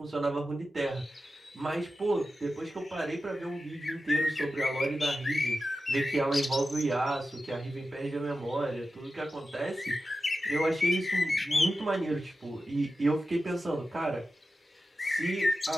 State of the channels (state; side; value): normal; both; correlation 0.92